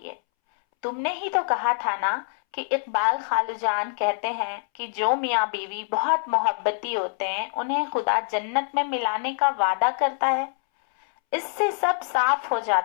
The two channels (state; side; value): silent; right; 62 dB below the other